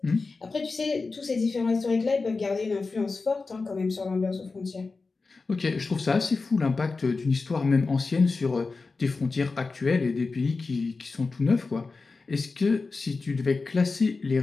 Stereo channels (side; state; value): right; quieter; 4.0 dB